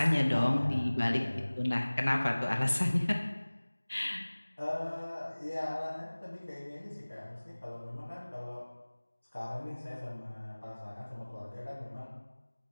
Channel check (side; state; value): both; inverted; correlation -1.00